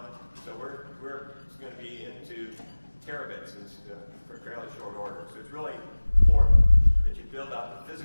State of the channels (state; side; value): inverted; both; correlation -1.00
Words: So we're going to be into terabits for fairly short order. So it's really important that you build out the